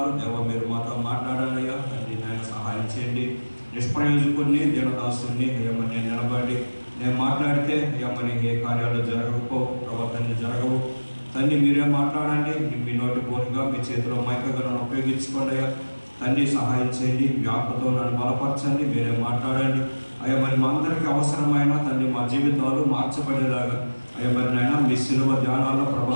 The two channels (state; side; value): inverted; both; correlation -1.00